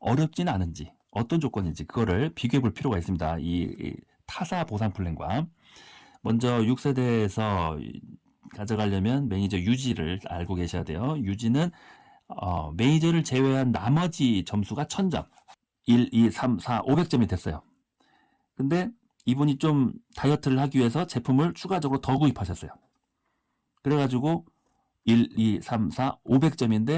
않은지, 어떤 조건인지 그거를 비교해 볼 필요가 있습니다. 이 타사 보상 플랜과. 먼저 6세대에서 가져가려면 매니저 유지를 알고 계셔야 돼요. 유지는 매니저를 제외한 나머지 점수가 1000점. 1, 2, 3, 4, 500점이 됐어요. 근데 이분이 좀 다이어트를 하기 위해서 제품을 추가적으로 더 구입하셨어요. 그래가지고 1, 2, 3, 4,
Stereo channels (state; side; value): identical; both; correlation 1.00